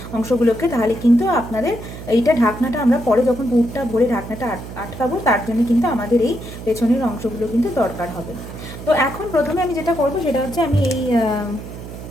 অংশগুলোকে, তাহলে কিন্তু আপনাদের এইটা ঢাকনাটা আমরা পরে যখন পুরটা ভরে ঢাকনাটা আটকাবো তার জন্য কিন্তু আমাদের এই পেছনের অংশগুলো কিন্তু দরকার হবে। তো এখন প্রথমে আমি যেটা করব সেটা হচ্ছে আমি এই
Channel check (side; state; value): right; noise; hum, 12 dB below the sound